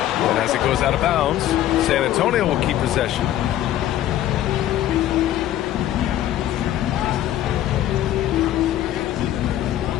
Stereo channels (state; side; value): quieter; right; 12.6 dB